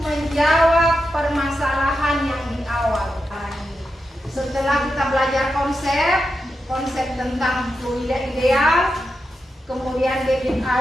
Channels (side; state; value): both; normal; correlation 0.88